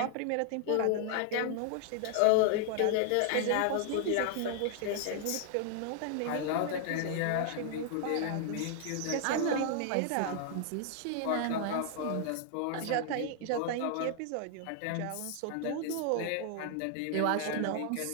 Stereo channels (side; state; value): both; different; correlation 0.00